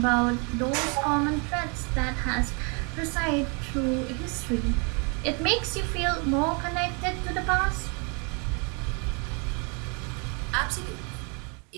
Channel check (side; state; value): left; quieter; 34.9 dB